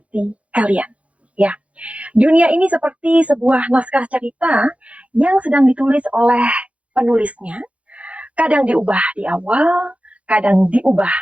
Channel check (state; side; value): late; left; 0.064 ms